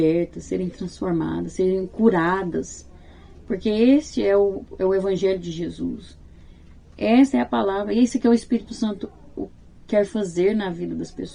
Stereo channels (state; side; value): identical; both; correlation 1.00